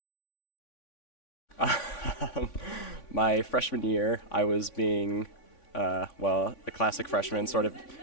My freshman year, I was being a classic freshman, sort of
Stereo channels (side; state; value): right; late; 3.5 ms